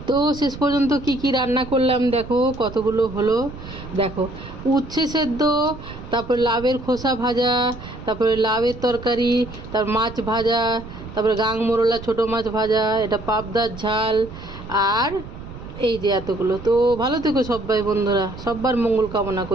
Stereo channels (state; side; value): noise; right; rumble, 13 dB below the sound